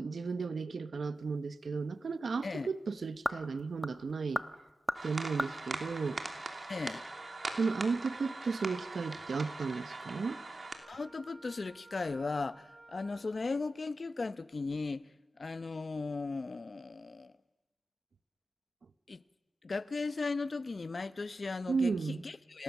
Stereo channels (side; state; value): both; normal; correlation 0.91